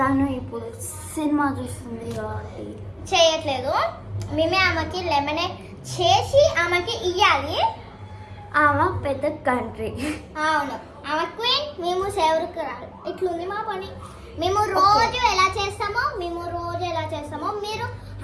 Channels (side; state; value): both; identical; correlation 1.00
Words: ఇప్పుడు సినిమా చూస్తుంది కాబట్టి చేయట్లేదు. మేమే ఆమెకి లెమనేడ్ చేసి ఆమెకి ఇవ్వాలి. ఆమె పెద్ద కంట్రీ. అవును, ఆమె క్వీన్, మేము సేవకురాలు. ఇట్లుంది మా పని. మేము రోజు ఎలా చేస్తామో మీరు